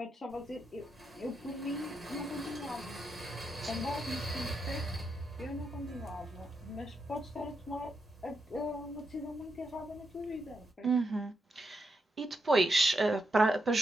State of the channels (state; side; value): normal; both; correlation 0.83